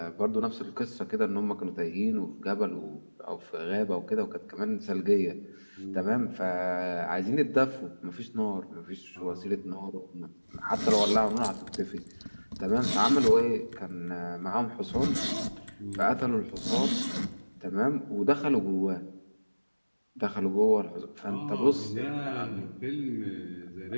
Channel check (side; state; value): both; inverted; correlation -1.00